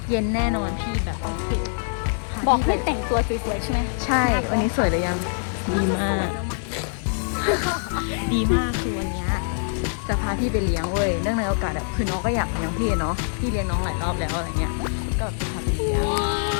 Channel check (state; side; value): silent; right; digital silence